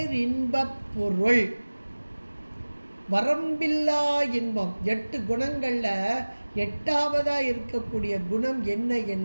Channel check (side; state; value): both; inverted; correlation -1.00